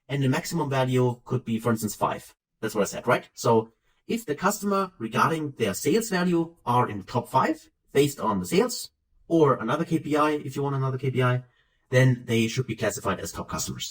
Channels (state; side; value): identical; both; correlation 1.00